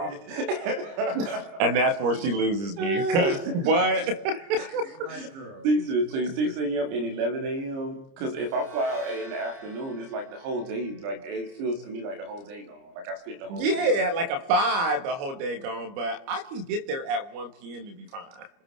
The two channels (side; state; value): left; late; 30 ms